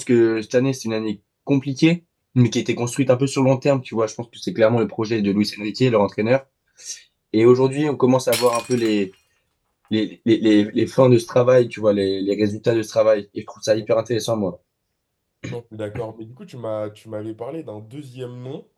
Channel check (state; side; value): identical; both; correlation 1.00